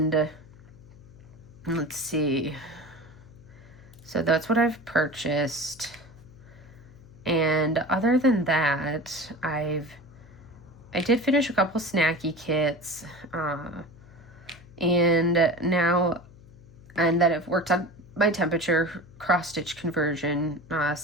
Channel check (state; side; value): noise; left; hum, 22 dB below the sound